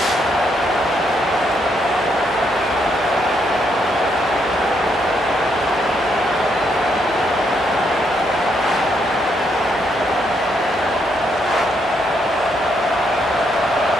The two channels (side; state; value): both; normal; correlation 0.75